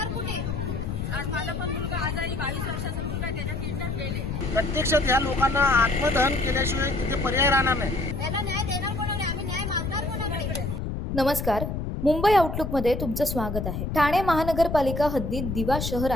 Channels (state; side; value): noise; left; rumble, 4 dB below the sound